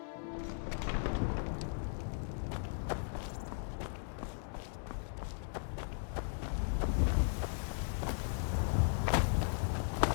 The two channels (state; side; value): silent; right; 53 dB below the other